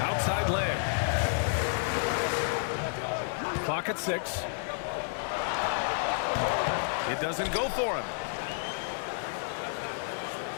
Outside Lamb. Clock at 6. It doesn't go for him.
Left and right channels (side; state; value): right; silent; 57 dB below the other